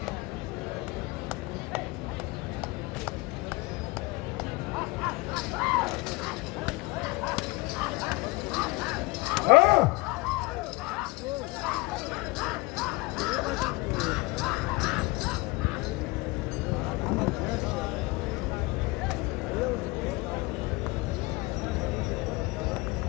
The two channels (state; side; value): quieter; right; 22.9 dB